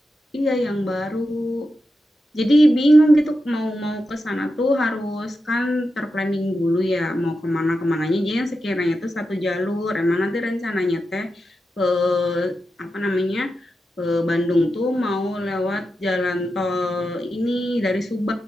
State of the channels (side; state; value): both; normal; correlation 0.89